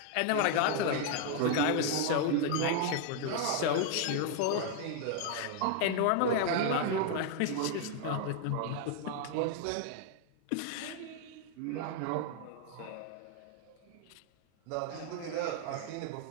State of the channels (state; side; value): different; both; correlation 0.00